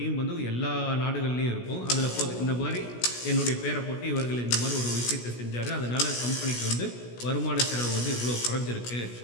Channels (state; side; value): late; right; 16 ms